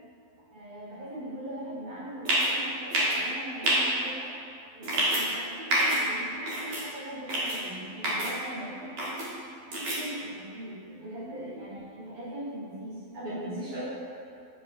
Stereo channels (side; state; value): left; late; 12 ms